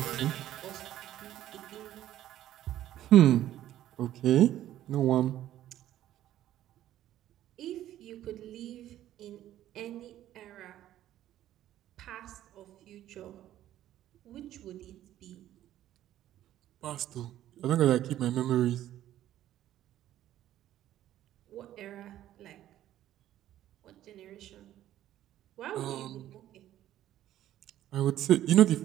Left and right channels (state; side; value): quieter; left; 12.8 dB